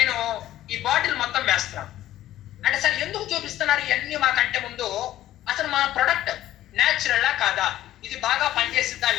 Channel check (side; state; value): right; quieter; 13.6 dB